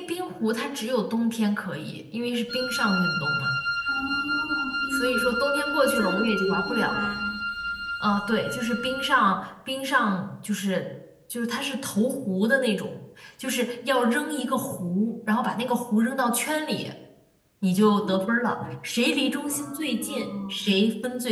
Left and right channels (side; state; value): both; identical; correlation 1.00